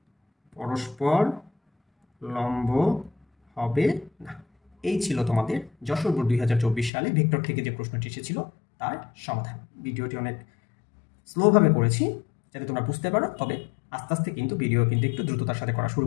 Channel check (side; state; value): right; drops out; at 6.9 s